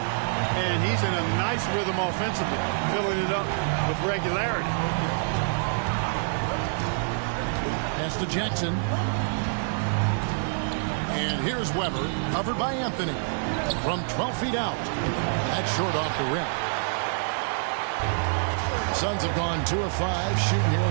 he's in a nice rhythm offensively, filling it up with regularity. Pass to Jackson. And here's Weber, covered by Anthony. From 12 feet out. That's short off the rim. The Suns have gone 2 of 5 shooting here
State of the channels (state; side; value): silent; left; digital silence